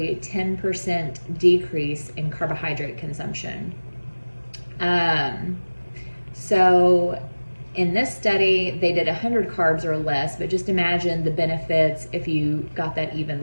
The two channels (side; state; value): both; inverted; correlation -1.00